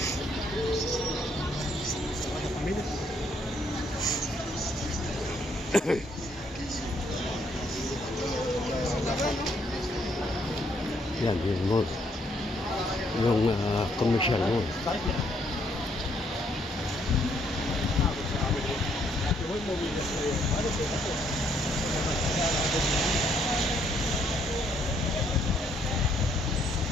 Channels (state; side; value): normal; both; correlation 0.70